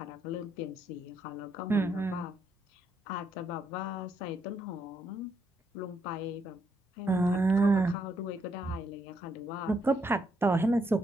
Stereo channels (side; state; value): both; normal; correlation 0.76